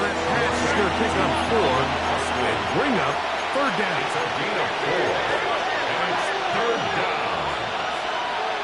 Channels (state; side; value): identical; both; correlation 1.00